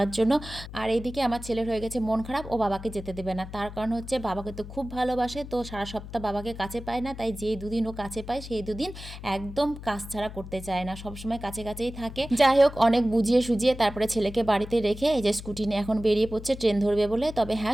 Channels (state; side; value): noise; left; hum, 12 dB below the sound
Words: জন্য। আর এইদিকে আমার ছেলের হয়ে গেছে মন খারাপ, ও বাবাকে যেতে দেবে না। তার কারণ হচ্ছে বাবাকে তো খুব ভালোবাসে, তো সারা সপ্তাহ বাবাকে কাছে পায় না, তাই যেই দুদিন ও কাছে পায় সেই দুদিন একদম কাজ ছাড়া করতে চায় না, সবসময় কাছে কাছেই থাকে। যাই হোক অনেক বুঝিয়ে সুঝিয়ে তারপরে ছেলেকে বাড়িতে রেখে এই যে স্কুটি নিয়ে এখন বেরিয়ে পড়ছে ট্রেন ধরবে বলে। তবে